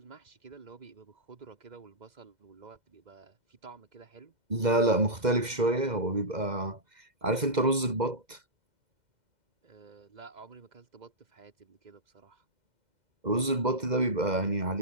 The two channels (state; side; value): late; left; 2.1 ms